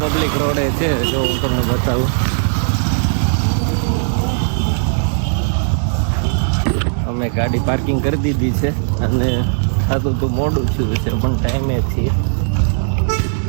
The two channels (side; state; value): left; silent; digital silence